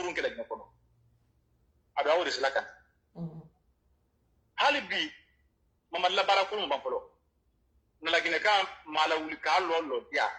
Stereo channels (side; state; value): both; identical; correlation 1.00